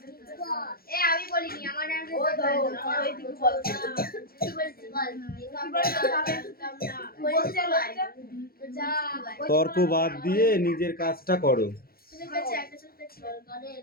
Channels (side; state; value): right; late; 0.44 ms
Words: তর্ক বাদ দিয়ে নিজের কাজটা করো